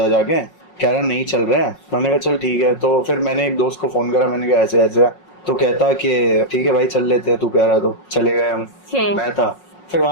जाके। कह रहा नहीं चल रहे हैं। मैंने कहा चल ठीक है। तो फिर मैंने एक दोस्त को फोन करा, मैंने कहा ऐसे ऐसे, तो कहता कि ठीक है भाई चल लेते हैं, तू कह रहा तो चले गए हम। मैं था फिर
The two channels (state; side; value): late; right; 5.5 ms